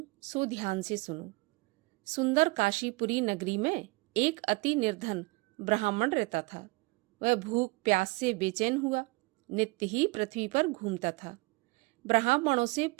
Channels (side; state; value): left; quieter; 25.3 dB